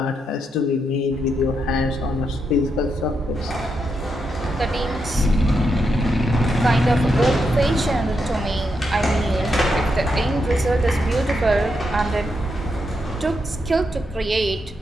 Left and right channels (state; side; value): normal; both; correlation 0.82